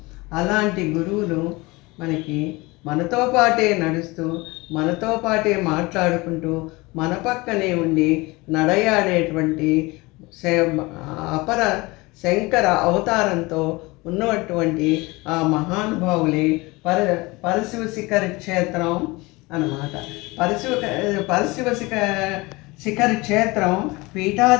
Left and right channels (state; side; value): quieter; right; 23.2 dB